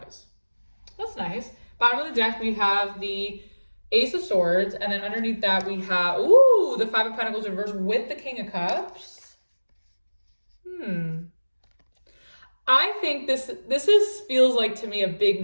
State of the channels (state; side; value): inverted; both; correlation -1.00